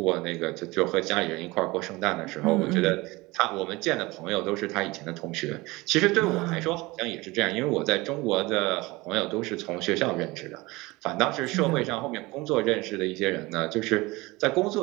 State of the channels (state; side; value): quieter; left; 22.0 dB